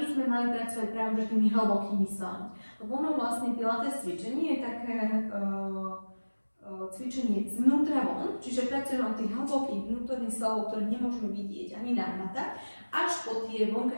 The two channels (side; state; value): both; inverted; correlation -1.00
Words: by sme mali pracovať práve tými hlbokými svalmi. Lebo ono vlastne pilates cvičenie je také cvičenie zvnútra von, čiže pracujeme od tých hlbokých vnútorných svalov, ktoré nemôžeme vidieť ani nahmatať, až po tie